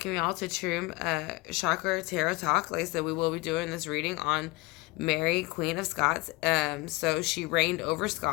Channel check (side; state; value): right; quieter; 23.3 dB